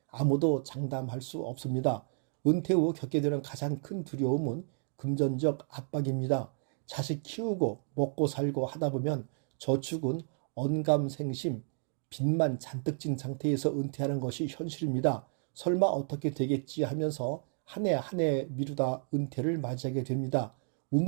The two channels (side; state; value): left; silent; 56 dB below the other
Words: 아무도 장담할 수 없습니다. 은퇴 후 겪게 되는 가장 큰 두려움은 금전적 압박입니다. 자식 키우고 먹고 살고 하다 보면 저축은 언감생심, 빚만 잔뜩 진 상태에서 은퇴하는 것이 현실입니다. 설마 어떻게 되겠지 하면서 한 해 한 해 미루다 은퇴를 맞이하게 됩니다.